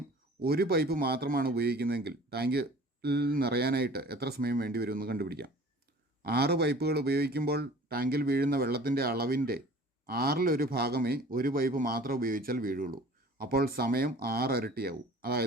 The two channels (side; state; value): both; normal; correlation 0.46